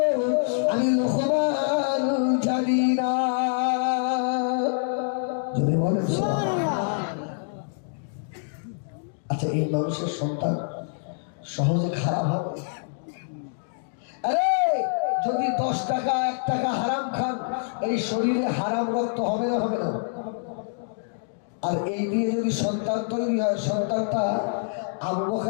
আমি লোকমান জানি না। যদি বলেন আচ্ছা, এই মানুষের সন্তান সহজে খারাপ হবে? আরে যদি 10 টাকা 1 টাকা হারাম খান, এই শরীরে হারাম রক্ত হবে না হবে না? আর এই দিয়ে যদি সন্তান তৈরি হয়, সন্তানটা আবু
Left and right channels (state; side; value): silent; right; digital silence